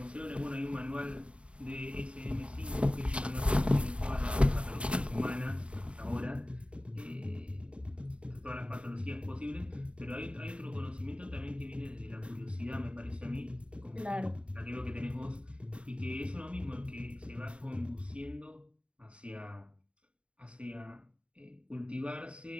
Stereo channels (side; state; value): left; late; 0.059 ms